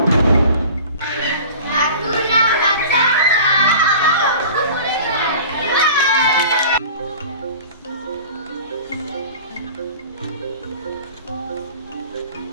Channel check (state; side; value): inverted; both; correlation -0.41